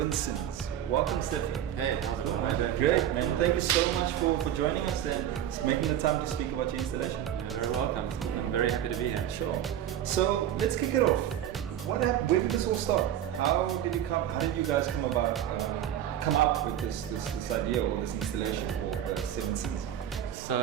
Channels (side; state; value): left; quieter; 10.8 dB